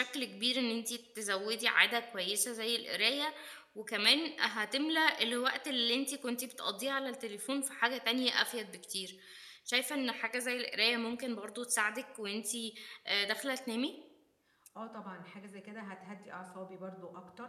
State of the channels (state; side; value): identical; both; correlation 1.00